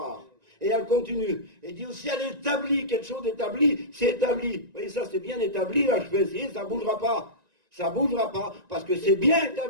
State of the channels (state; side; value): late; left; 1.9 ms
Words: Et elle continue. Et dit aussi, elle établit quelque chose d'établi, c'est établi. Vous voyez, ça c'est bien établi, là je vais essayer, ça ne bougera pas. Ça ne bougera pas, parce que c'est bien